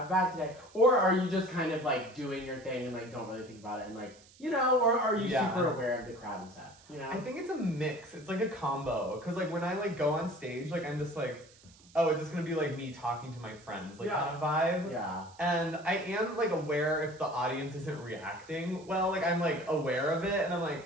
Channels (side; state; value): right; noise; hiss, 25 dB below the sound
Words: bad today. Or are you just kind of like doing your thing and like don't really think about it and like, you know, or are you Yeah. super aware of the crowd and stuff? You know? I think it's a mix. It's like a combo. Cause like when I like go on stage, like I'm just like, oh, it's just gonna be like me talking to my friends, like Yeah. kind of vibe. Yeah. And I am like aware if the audience isn't reacting well, like I'm like aware of it and I'm like,